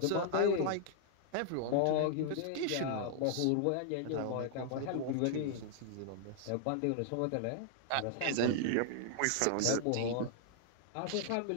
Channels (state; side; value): different; both; correlation -0.01